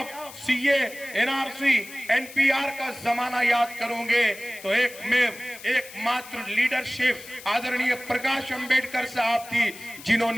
सीए, एनआरसी, एनपीआर का जमाना याद करोगे तो एकमात्र लीडरशिप आदरणीय प्रकाश अंबेडकर साहब थी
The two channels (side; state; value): left; noise; hiss, 16 dB below the sound